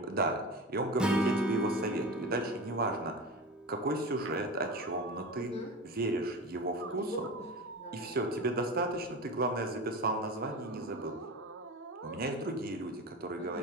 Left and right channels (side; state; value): both; normal; correlation 0.28